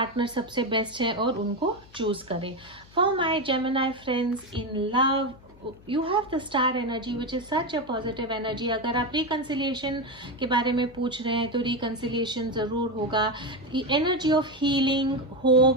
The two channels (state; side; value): noise; left; hum, 24 dB below the sound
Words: सबसे बेस्ट है और उनको चूज करें. For my Gemini friends in love, you have the star energy which is such a positive energy. अगर आप रिकन्सिलिएशन के बारे में पूछ रहे हैं तो रिकन्सिलिएशन जरूर होगा. Energy of healing,